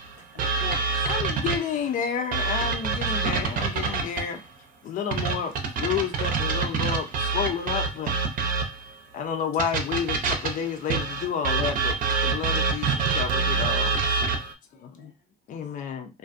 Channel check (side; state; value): both; normal; correlation 0.02